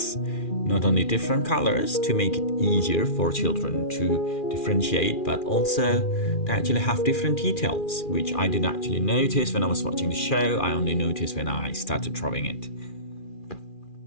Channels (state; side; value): late; right; 2.4 ms